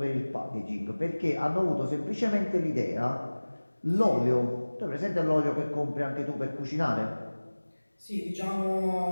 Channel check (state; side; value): inverted; both; correlation -1.00